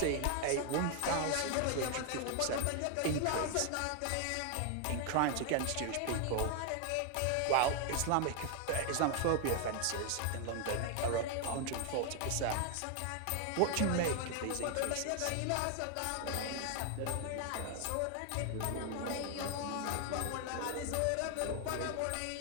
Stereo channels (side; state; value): both; different; correlation 0.00